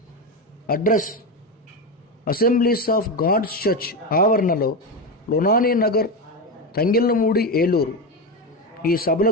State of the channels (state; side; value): normal; both; correlation 0.15